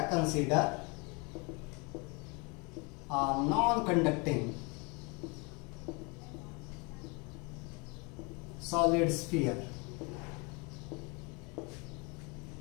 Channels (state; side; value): quieter; right; 30.3 dB